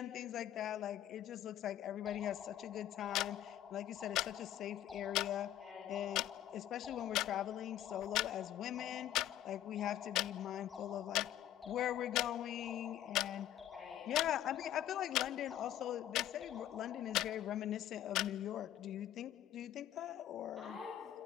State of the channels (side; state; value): right; quieter; 12.0 dB